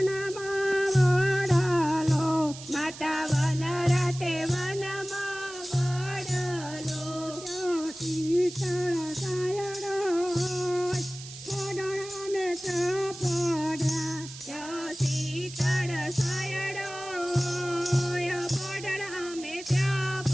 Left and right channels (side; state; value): right; noise; hiss, 14 dB below the sound